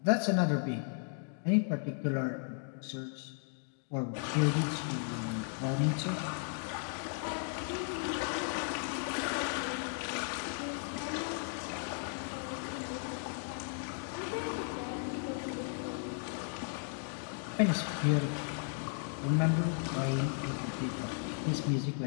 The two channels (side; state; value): right; silent; 54 dB below the other